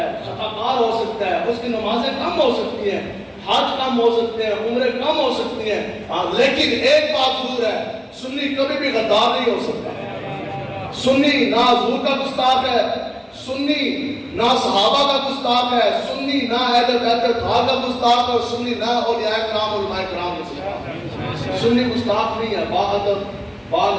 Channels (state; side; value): identical; both; correlation 1.00